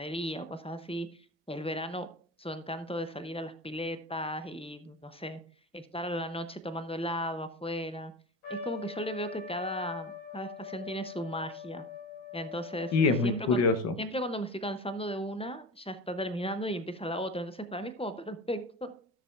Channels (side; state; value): both; normal; correlation 0.32